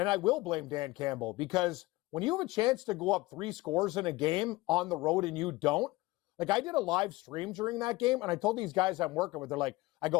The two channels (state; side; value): quieter; right; 20.5 dB